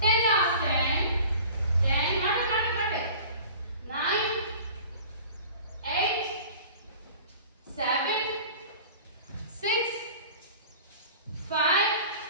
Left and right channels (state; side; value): inverted; both; correlation -0.42